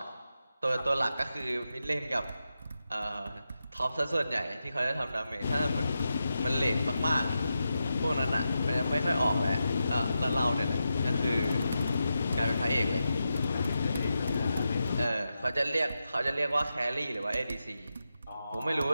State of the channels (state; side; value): inverted; both; correlation -0.88